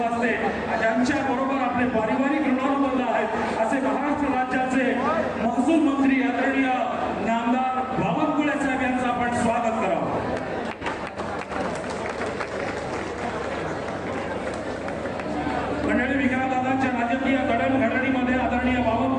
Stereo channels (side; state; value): both; identical; correlation 1.00